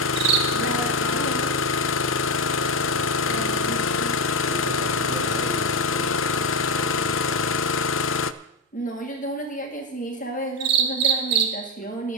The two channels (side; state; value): both; normal; correlation 0.09